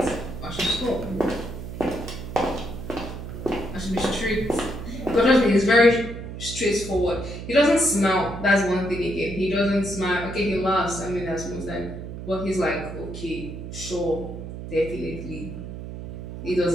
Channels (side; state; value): right; noise; hum, 9 dB below the sound